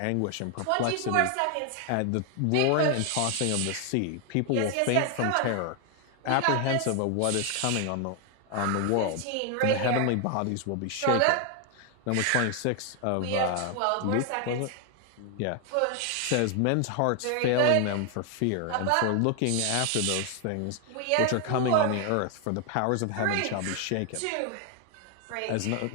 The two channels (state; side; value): different; both; correlation 0.00